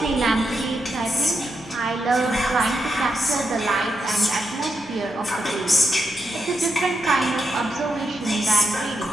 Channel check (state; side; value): normal; both; correlation 0.84